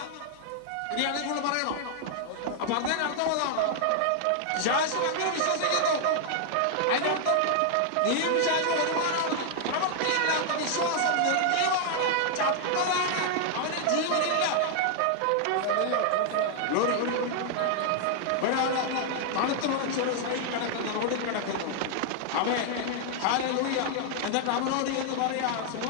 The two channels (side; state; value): both; different; correlation 0.00